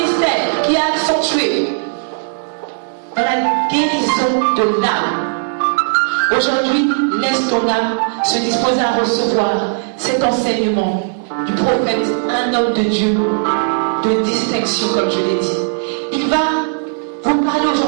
qui a accentué dans la guérison de l'âme. Aujourd'hui, laisse ton âme se disposer à recevoir cet enseignement du prophète, un homme de Dieu, de distinction, comme je l'ai dit. Il va vous parler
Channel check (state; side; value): silent; left; 66 dB below the other